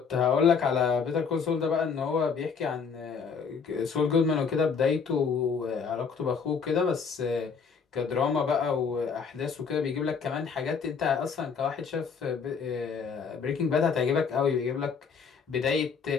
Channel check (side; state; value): right; quieter; 5.9 dB